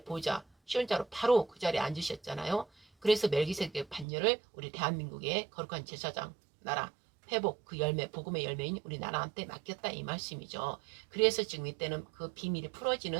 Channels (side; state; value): left; drops out; at 4.0 s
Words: 보좌 시온자로 바로 그 자리에 앉으셨잖아요. 그래서 멜기세덱 반열을 우리 대한민국의 거룩한 제사장 나라 회복 그 열매 복음의 열매인 우리나라한테 맡겼다 이 말씀이죠. 그래서 지금 이때는 그 비밀이